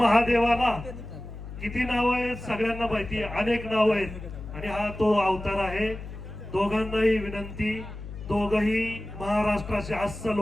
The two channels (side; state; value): left; noise; hum, 11 dB below the sound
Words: किती नाव आहेत सगळ्यांना माहिती आहे, अनेक नाव आहेत आणि हा तो अवतार आहे. दोघांनाही विनंती, दोघही महाराष्ट्राचे अस्सल